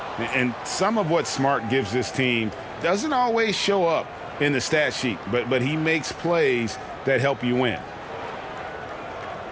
And some of what Smart gives this team doesn't always show up in the stat sheet, but he makes plays that help you win.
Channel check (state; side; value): identical; both; correlation 1.00